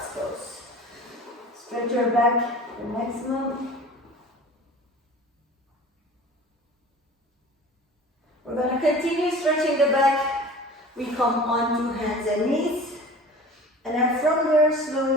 pose. Stretch your back the maximum. We're going to continue stretching the back. We come onto hands and knees. And then from there,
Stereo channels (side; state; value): both; normal; correlation 0.41